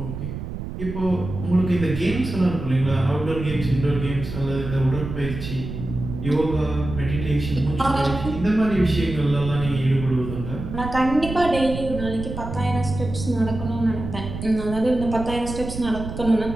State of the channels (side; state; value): right; noise; rumble, 8 dB below the sound